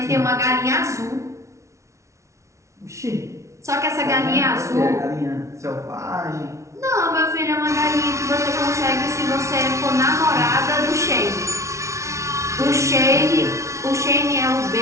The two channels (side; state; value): left; late; 0.14 ms